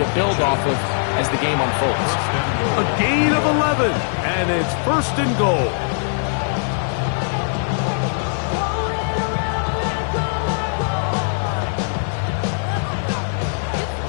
build off of as the game unfolds. A gain of 11, and it's 1st and goal.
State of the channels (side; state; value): right; silent; 61 dB below the other